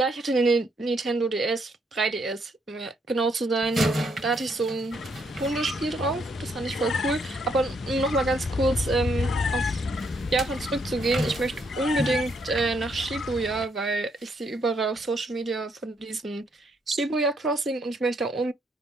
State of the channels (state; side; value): normal; both; correlation 0.73